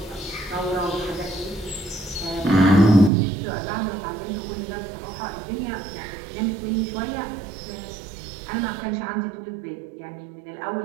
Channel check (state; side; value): drops out; left; at 3.1 s